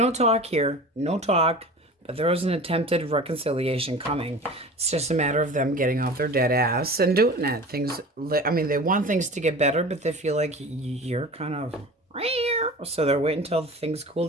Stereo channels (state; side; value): normal; both; correlation 0.37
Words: talk here. No talk. But there is an attempted reconciliation coming. It's just a matter of them getting off their dead ass and doing it. They want things to get better, but they feel like you're kind of... So they're waiting until things cool